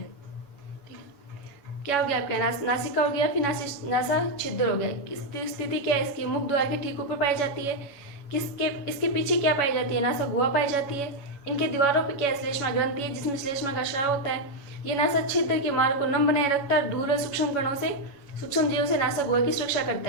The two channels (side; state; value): right; late; 7.2 ms